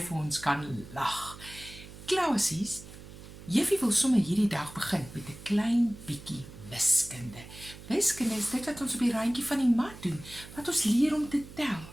ons kan lag? Klasies, Juffie wil sommer hierdie dag begin met 'n klein bietjie wiskunde. Wiskunde is dit wat ons op die randjie van die mat doen, wat ons leer om te tel.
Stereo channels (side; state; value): right; noise; hum, 16 dB below the sound